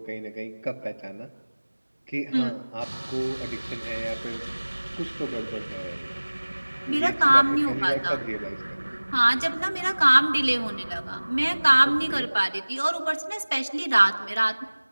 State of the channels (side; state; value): both; inverted; correlation -1.00